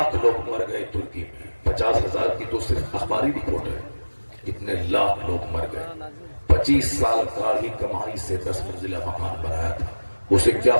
لوگ مر گئے ترکی میں، 50,000 کی تو صرف اخباری رپورٹ ہے، کتنے لاکھ لوگ مر گئے۔ 25 سال کا ہی کمائی سے 10 منزلہ مکان بنایا تھا، اسے کیا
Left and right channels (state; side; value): inverted; both; correlation -1.00